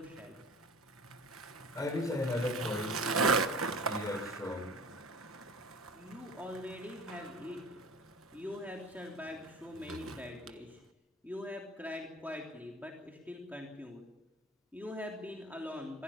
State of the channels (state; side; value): normal; both; correlation 0.39